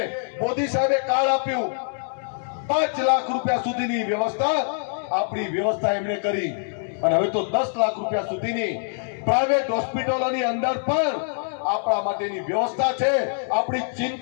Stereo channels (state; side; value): silent; right; 62 dB below the other